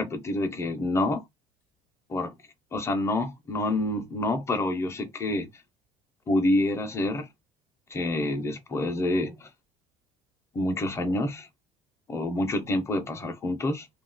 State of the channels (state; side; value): normal; both; correlation 0.67